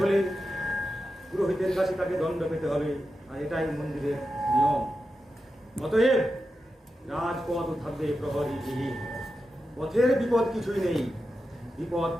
হলে পুরোহিতের কাছে তাকে দণ্ড পেতে হবে, আর এটাই মন্দিরের নিয়ম। অতএব রাজপথ থাকবে প্রহরীবিহীন। পথের বিপদ কিছুই নেই, বিপদ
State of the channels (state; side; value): normal; both; correlation 0.90